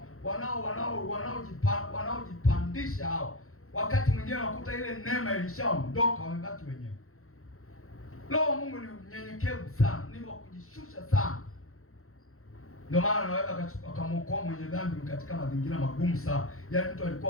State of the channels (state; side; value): late; right; 0.63 ms